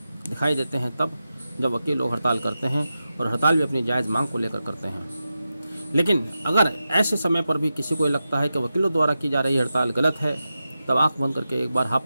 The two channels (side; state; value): both; inverted; correlation -0.91